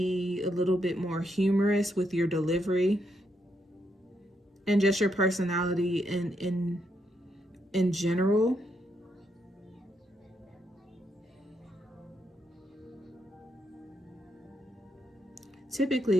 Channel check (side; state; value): both; normal; correlation 0.79